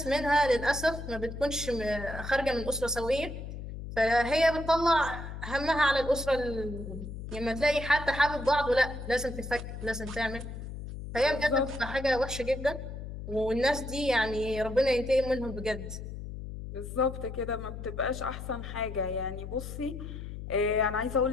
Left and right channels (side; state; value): left; noise; hum, 9 dB below the sound